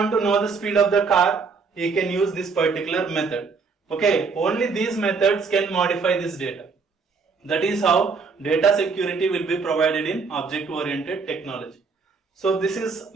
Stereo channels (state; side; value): quieter; left; 4.8 dB